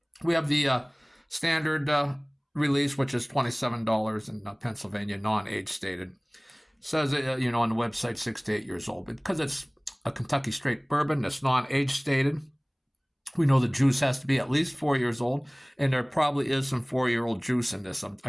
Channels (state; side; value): identical; both; correlation 1.00